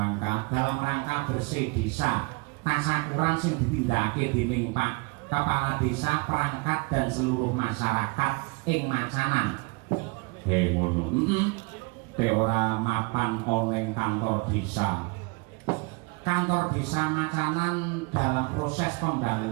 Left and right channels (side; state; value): left; quieter; 29.6 dB